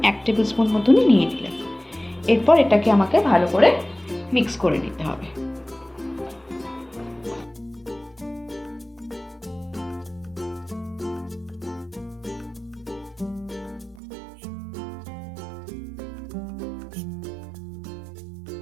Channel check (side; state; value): left; drops out; at 14.0 s